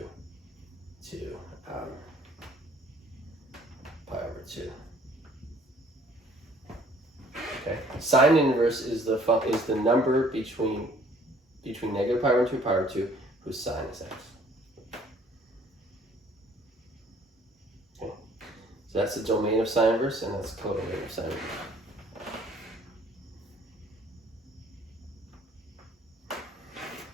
to pi over 2. Okay, sine inverse is the number between negative pi over 2 and pi over 2 whose sine is x. Okay, so that's the domain of sine inverse, and that's codomain of sine inverse.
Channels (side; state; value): both; normal; correlation 0.57